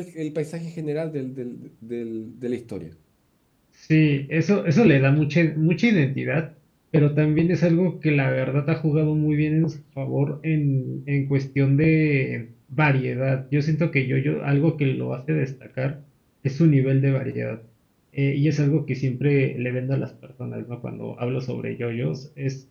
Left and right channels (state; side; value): identical; both; correlation 1.00